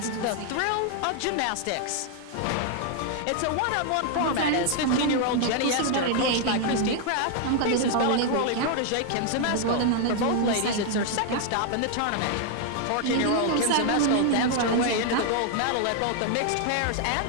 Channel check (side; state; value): both; different; correlation 0.00